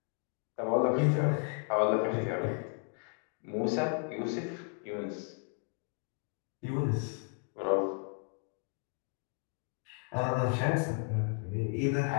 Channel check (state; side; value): quieter; right; 39.3 dB